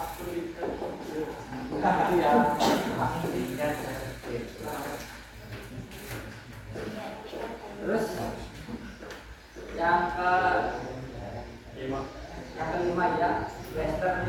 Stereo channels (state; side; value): identical; both; correlation 1.00